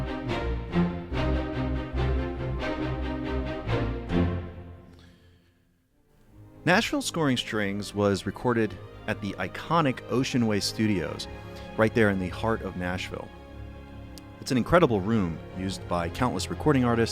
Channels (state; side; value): identical; both; correlation 1.00